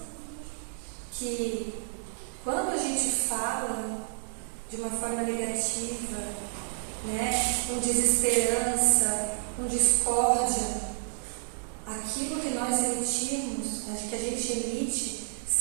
que quando a gente fala de uma forma negativa, com desesperança, com discórdia, aquilo que nós emitimos, que a gente emite,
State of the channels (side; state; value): left; silent; digital silence